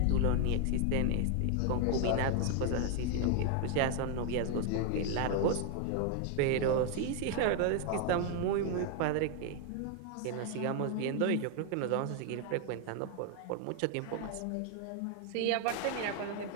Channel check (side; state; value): both; different; correlation 0.00